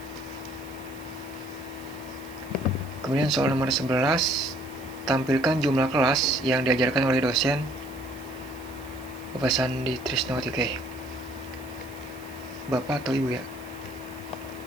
Kemudian soal nomor 11, tampilkan jumlah kelas yang diajarkan oleh dosen Bapak Sandi Trisnawati. Oke. Bapak atau Ibu ya?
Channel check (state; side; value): noise; right; hiss, 22 dB below the sound